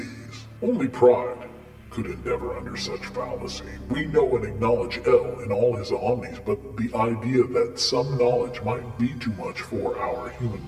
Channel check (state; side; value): identical; both; correlation 1.00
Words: Only pride could endeavor under such fallacy. We know and acknowledge El in all his omnis, but the idea that some knowledge might be too much for our human